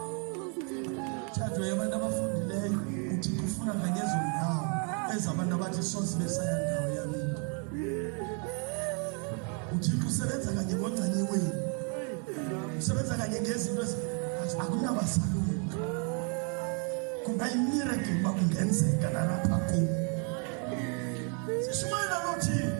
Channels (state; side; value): quieter; left; 38.4 dB